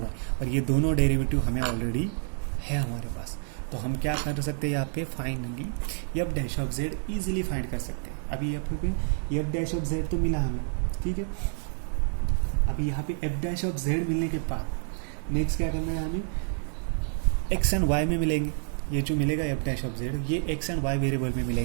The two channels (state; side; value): silent; left; 59 dB below the other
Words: और ये दोनों डेरिवेटिव हमें ऑलरेडी है हमारे पास। तो हम क्या कर सकते हैं यहाँ पे? Finally F dash of Z easily find कर सकते हैं। अभी यहाँ पे एफ डैश ऑफ जेड तो मिला हमें, ठीक है? अभी यहाँ पे एफ डैश ऑफ जेड मिलने के बाद नेक्स्ट क्या करना है हमें? एक्स एंड वाई में मिलेंगे, ये जो मिलेगा एफ डैश ऑफ जेड ये एक्स एंड वाई वेरिएबल में